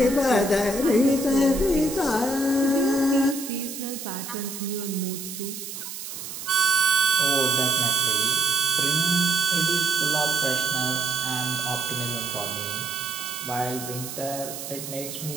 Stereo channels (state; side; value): noise; right; hiss, 9 dB below the sound